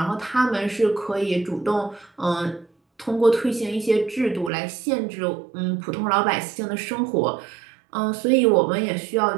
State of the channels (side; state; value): left; drops out; at 4.5 s